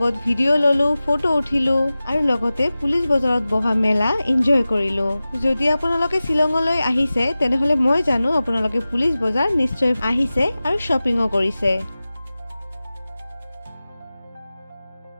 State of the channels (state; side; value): inverted; both; correlation -0.96